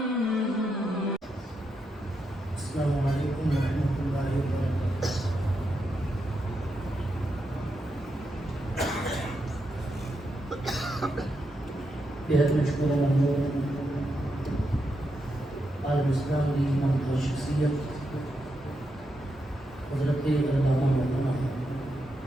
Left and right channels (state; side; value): normal; both; correlation 0.84